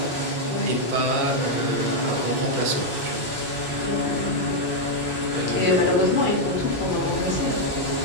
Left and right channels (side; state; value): both; normal; correlation -0.01